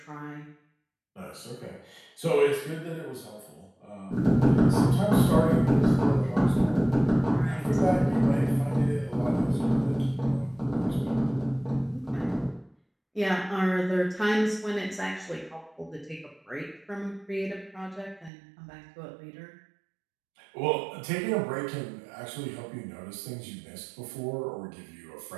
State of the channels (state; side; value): drops out; left; at 18.3 s